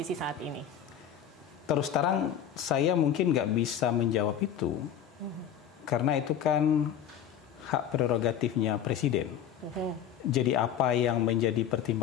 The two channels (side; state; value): right; quieter; 9.2 dB